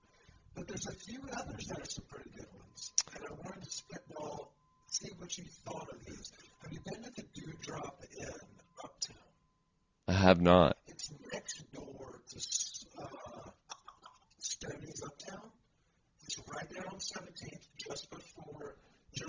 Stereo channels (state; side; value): identical; both; correlation 1.00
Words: But there's a few others that are some pretty good ones. And I wanted to spitball, see what you thought of these. Have you been to the Dewdrop Inn uptown? I have not. It's next door to Stoney's Uptown. It's right there on 17th,